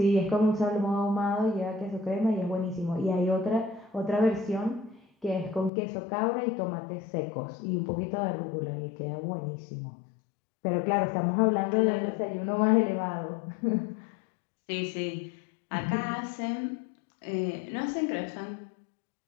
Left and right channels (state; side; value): drops out; right; at 5.7 s